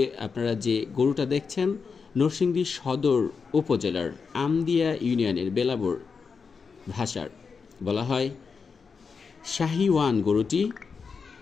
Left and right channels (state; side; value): quieter; right; 5.4 dB